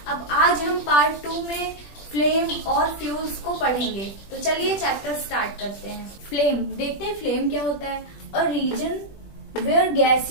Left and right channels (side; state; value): right; late; 20 ms